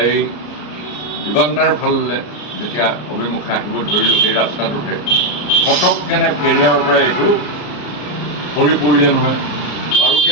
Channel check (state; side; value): late; right; 34 ms